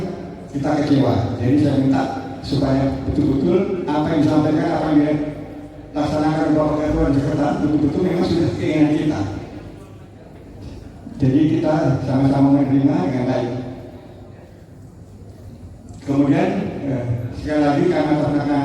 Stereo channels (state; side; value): identical; both; correlation 1.00